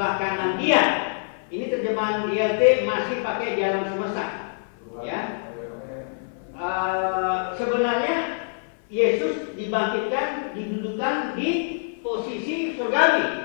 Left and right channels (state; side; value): silent; right; 56 dB below the other